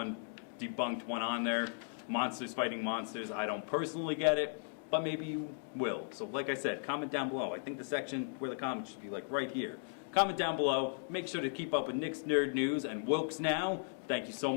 debunked one on there. Monsters fighting monsters. I don't personally get it, but maybe you will. So like I said, comment down below. I think the section where the comments should be like right here. Comment down below. Make sure to keep up with Nick's Nerd News and Wilkes Now. Thank you so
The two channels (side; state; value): right; silent; digital silence